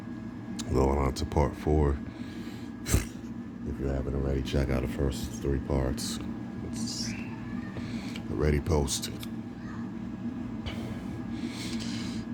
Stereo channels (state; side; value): identical; both; correlation 1.00